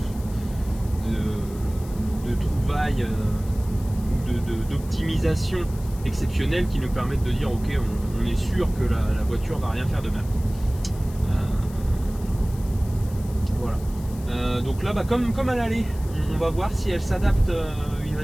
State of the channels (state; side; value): noise; left; hiss, 21 dB below the sound